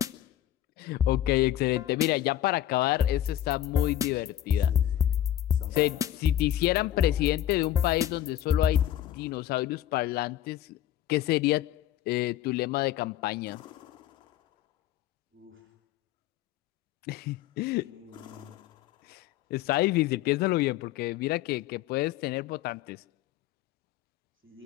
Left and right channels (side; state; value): right; quieter; 12.3 dB